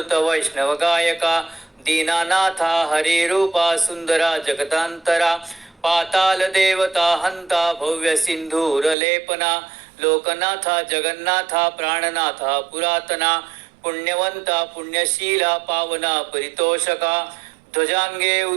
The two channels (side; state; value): left; drops out; at 9.0 s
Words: वैष्णव गायका दीनानाथा हरिरूपा सुंदरा जगतांतरा पाताल देवता हंता भव्य सिंधूर लेपना लोकनाथा जगन्नाथा प्राणनाथा पुरातना पुण्यवंता पुण्यशीला पावना परितोषका ध्वजांगे